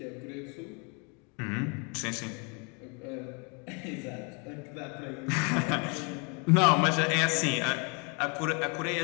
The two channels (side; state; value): right; quieter; 34.0 dB